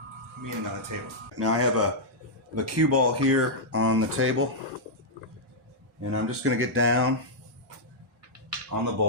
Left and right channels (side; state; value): both; normal; correlation -0.08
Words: meaning on the table. Now I have a cue ball here on the table, and I'm just going to get down on the